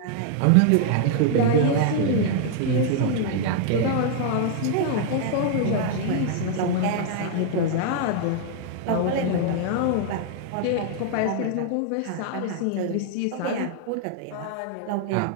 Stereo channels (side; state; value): both; different; correlation 0.00